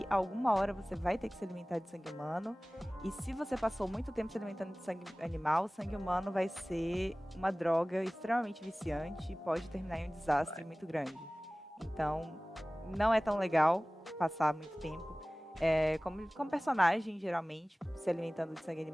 alguma hora você vai ter que se alimentar de sangue humano. E se você passou muito tempo se alimentando de sangue animal, o sangue humano vai ser uma droga extremamente viciante e pode terminar em um desastre muito grande. Então, não é tão legal passar muito tempo. Como personagem, geralmente, se alimentando de sangue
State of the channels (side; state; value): both; normal; correlation 0.98